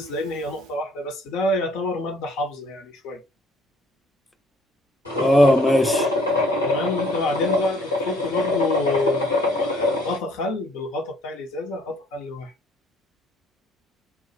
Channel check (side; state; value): both; normal; correlation 0.61